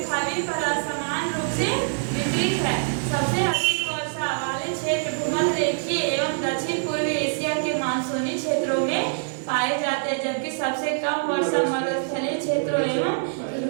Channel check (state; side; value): silent; left; digital silence